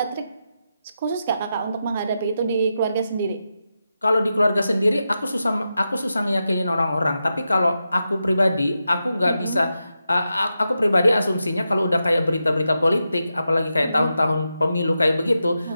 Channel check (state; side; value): inverted; both; correlation -0.88